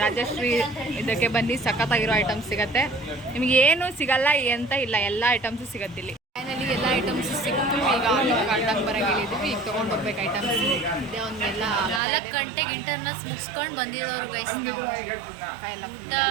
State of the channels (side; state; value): left; drops out; at 12.0 s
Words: ರಾಜಶ್ರೀ ಇದಕ್ಕೆ ಬನ್ನಿ, ಸಖತ್ತಾಗಿರೋ ಐಟಮ್ಸ್ ಸಿಗತ್ತೆ. ನಿಮ್ಗೆ ಏನು ಸಿಗಲ್ಲ ಅಂತ ಇಲ್ಲ, ಎಲ್ಲ ಐಟಮ್ಸು ಸಿಗತ್ತಿಲ್ಲಿ. ಫೈನಲಿ ಎಲ್ಲ ಐಟಮ್ಸು ಸಿಕ್ತು. ಈಗ ಕಾಲ್ಡಂಗೆ ಬರೋಕೆ ಹೇಳಿದ್ವಿ. ಈಗ ತೊಗೊಂಡು ಹೋಗ್ಬೇಕು ಐಟಮ್ಸ್. ಇದೇ ಒಂದೆಲ್ಲ 4 ಗಂಟೆಗೆ ಇಂಟರ್ನಲ್ಸ್ ಮುಗಿಸ್ಕೊಂಡು ಬಂದಿರೋರು ಗೈಸ್.